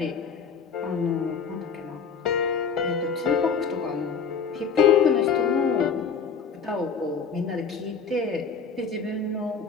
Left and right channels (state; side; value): quieter; right; 6.0 dB